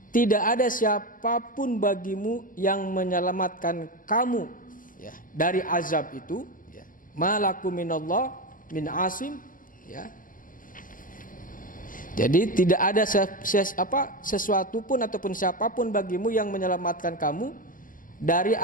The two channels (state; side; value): late; right; 0.39 ms